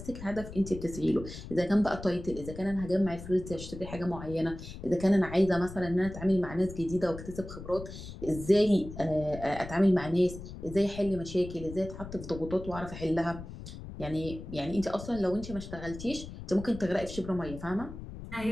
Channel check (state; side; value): noise; left; rumble, 12 dB below the sound